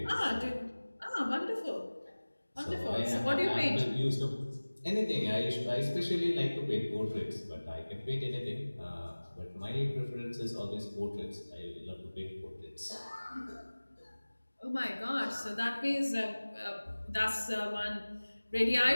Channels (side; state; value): both; inverted; correlation -1.00